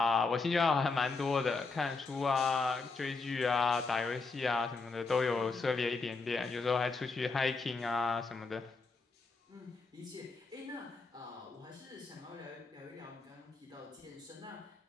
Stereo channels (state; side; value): quieter; right; 4.1 dB